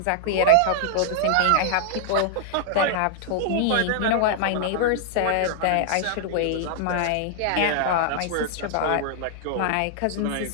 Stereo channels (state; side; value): different; both; correlation -0.01